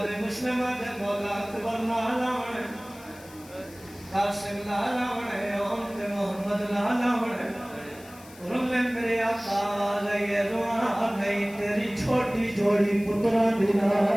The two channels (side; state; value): left; noise; hiss, 22 dB below the sound